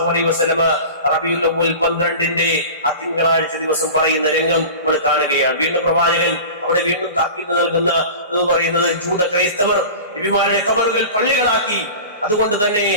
അലൈഹി വസല്ലമ റബീഉൽ അവ്വൽ 12ന്റെ ആ തിങ്കളാഴ്ച ദിവസം പറയുന്ന രംഗം നമ്മൾ കാണുകയാണ്. വീണ്ടും പ്രവാചകൻ അവിടെ വീണ്ടും താക്കീത് നൽകുന്ന എന്ന് പറയുന്നത് ജൂത ക്രൈസ്തവർ നബിമാരുടെ ഖബറുകൾ പള്ളികളാക്കി. അതുകൊണ്ട് തന്നെ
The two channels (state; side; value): inverted; both; correlation -0.35